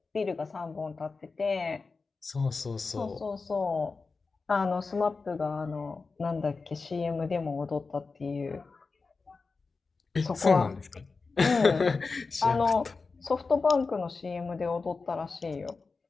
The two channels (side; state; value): right; quieter; 4.3 dB